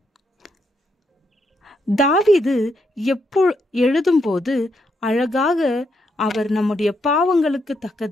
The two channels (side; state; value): both; normal; correlation 0.78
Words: தாவீது எழுதும்போது அழகாக அவர் நம்முடைய பாவங்களுக்கு